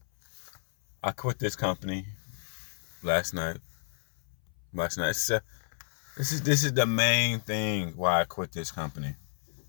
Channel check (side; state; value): right; silent; 57 dB below the other